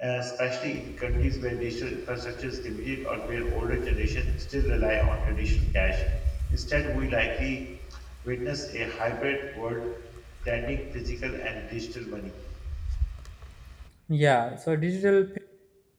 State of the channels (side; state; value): both; identical; correlation 1.00